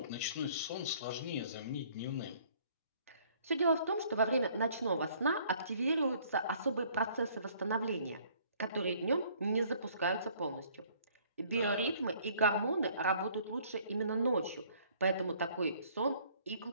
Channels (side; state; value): both; inverted; correlation -0.59